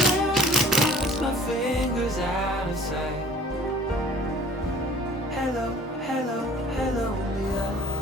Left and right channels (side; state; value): both; normal; correlation 0.48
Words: to cross my fingers out of sight. Hello, hello, hello, Leah.